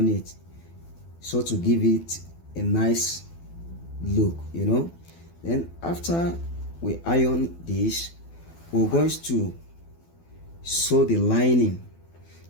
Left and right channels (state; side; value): late; right; 12 ms